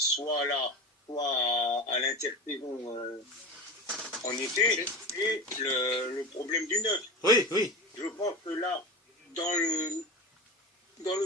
là, soit à l'intersaison en été, et le problème du neuf. Oui, oui. Je pense que là, dans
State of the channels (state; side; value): normal; both; correlation 0.27